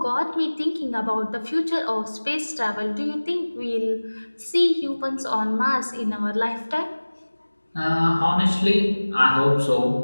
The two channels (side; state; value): both; inverted; correlation -1.00